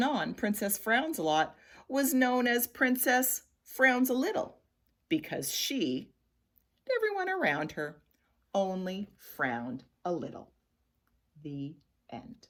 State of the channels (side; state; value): both; identical; correlation 1.00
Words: on, Princess Frownsalot was known as Princess Frownsalot because she, and everyone around her, only frowned a little. The end.